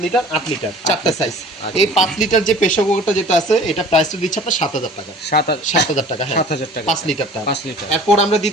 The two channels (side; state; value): both; normal; correlation 0.47